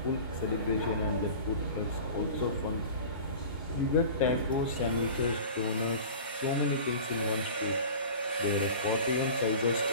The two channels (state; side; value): inverted; both; correlation -0.38